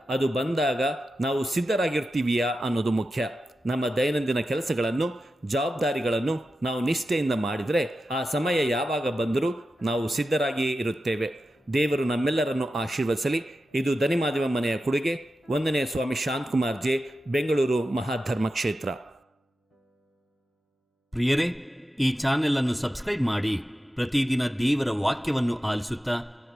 ಅದು ಬಂದಾಗ ನಾವು ಸಿದ್ಧರಾಗಿರ್ತೀವಿಯಾ ಅನ್ನೋದು ಮುಖ್ಯ. ನಮ್ಮ ದೈನಂದಿನ ಕೆಲಸಗಳನ್ನು, ಜವಾಬ್ದಾರಿಗಳನ್ನು ನಾವು ನಿಷ್ಠೆಯಿಂದ ಮಾಡಿದರೆ ಆ ಸಮಯ ಯಾವಾಗ ಬಂದರೂ ನಾವು ಸಿದ್ಧರಾಗಿಯೇ ಇರುತ್ತೇವೆ. ದೇವರು ನಮ್ಮೆಲ್ಲರನ್ನು ಆಶೀರ್ವದಿಸಲಿ. ಇದು ದನಿಮಾದಿವ ಮನೆಯ ಕೊಡುಗೆ. 1ನೇ ಸ್ವಾಮಿ ಶಾಂತಕುಮಾರ್ ಜೆ, ಬೆಂಗಳೂರು ಮಹಾಧರ್ಮ ಕ್ಷೇತ್ರ. ಪ್ರಿಯರೇ, ಈ ಚಾನೆಲ್ ಅನ್ನು ಸಬ್ಸ್ಕ್ರೈಬ್ ಮಾಡಿ ಪ್ರತಿದಿನ ದೇವರ ವಾಕ್ಯವನ್ನು ಆಲಿಸುತ್ತಾ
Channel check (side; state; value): both; normal; correlation 0.91